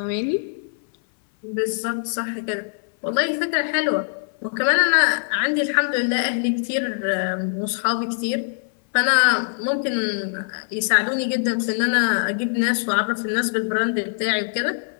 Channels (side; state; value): right; silent; 59 dB below the other